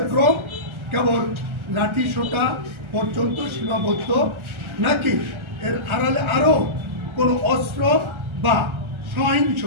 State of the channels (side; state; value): left; late; 1.3 ms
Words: কেবল লাঠি সোঁটা পর্যন্ত সীমাবদ্ধ নাকি এর আড়ালে আরও কোনো অস্ত্র বা সহিংস